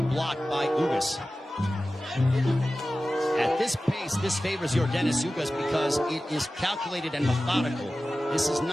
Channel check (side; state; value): both; normal; correlation 0.95